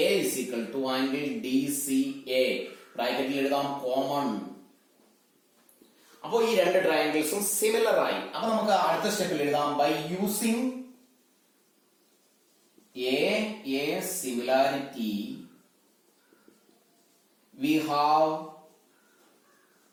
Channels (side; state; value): both; identical; correlation 1.00